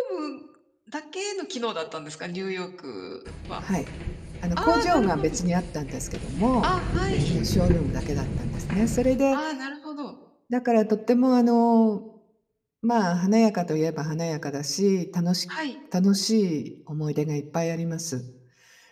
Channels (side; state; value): both; identical; correlation 1.00